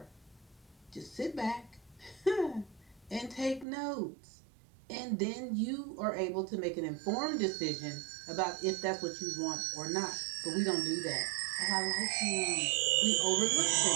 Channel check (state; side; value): drops out; left; at 3.7 s